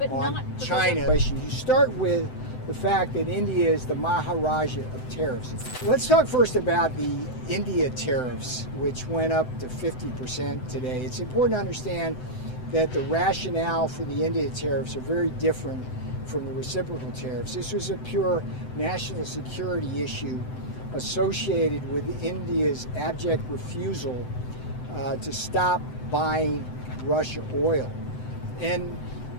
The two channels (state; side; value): late; right; 7.9 ms